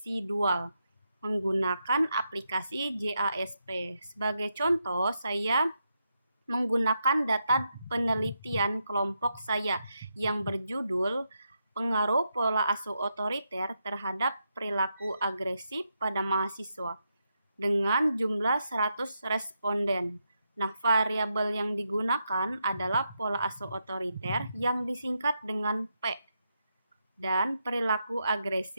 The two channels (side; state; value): both; inverted; correlation -0.83